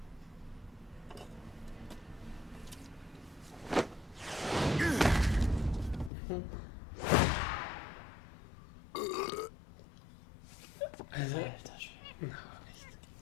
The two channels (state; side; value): drops out; right; at 6.1 s